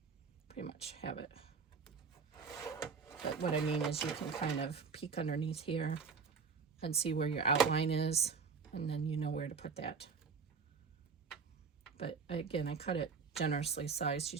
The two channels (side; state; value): left; quieter; 5.3 dB